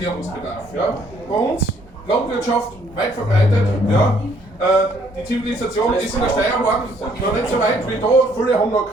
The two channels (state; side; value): normal; both; correlation 0.65